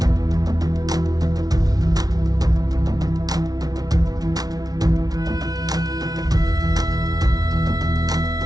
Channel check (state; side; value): late; left; 0.19 ms